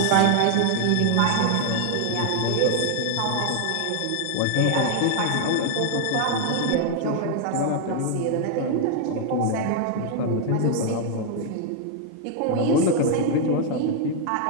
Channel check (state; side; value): different; both; correlation 0.00